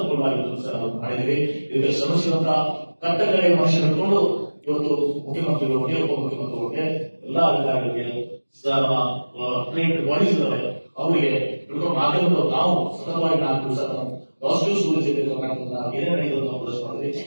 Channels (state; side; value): inverted; both; correlation -1.00